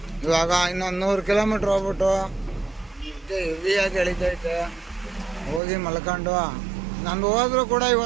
ಇವಾಗ ಇನ್ನೊಂದು 100 ಕಿಲೋಮೀಟ್ರ್ ಹೋಗ್ಬಿಟ್ಟು ಹೆವಿಯಾಗಿ ಎಳಿತೈತೆ. ಹೋಗಿ ಮಲ್ಕೊಂಡು ನಂದು ಹೋದ್ರೂ ಕೂಡ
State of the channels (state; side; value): drops out; left; at 5.6 s